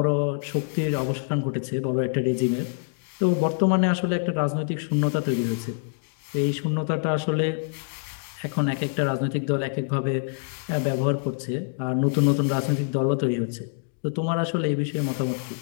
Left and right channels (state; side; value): silent; right; digital silence